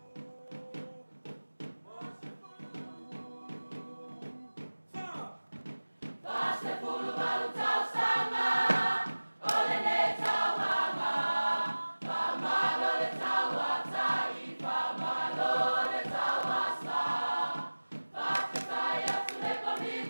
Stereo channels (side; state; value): both; inverted; correlation -1.00